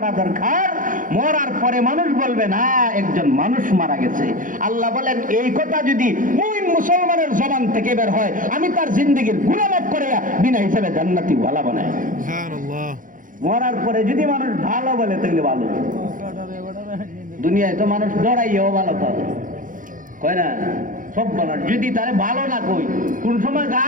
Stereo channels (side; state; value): left; late; 0.39 ms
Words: দরকার, মরার পরে মানুষ বলবে না একজন মানুষ মারা গেছে। আল্লাহ বলেন, এই কথা যদি মুমিন মুসলমানের জবান থেকে বের হয়, আমি তার জিন্দেগীর গুনাহ মাফ করে বিনা হিসাবে জান্নাতি ওয়ালা বানাই। সুবহানাল্লাহ। মরার পরে যদি মানুষ ভালো বলে তাহলে ভালো। দুনিয়ায় তো মানুষ ডরাইও ভালো কয় না, সব বলার যদি তারে ভালো না কই, কোন সময়